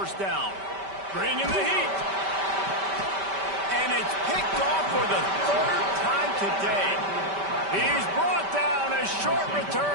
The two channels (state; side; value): late; left; 5.1 ms